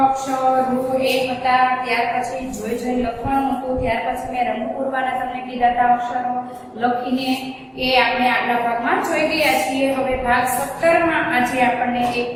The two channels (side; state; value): both; identical; correlation 1.00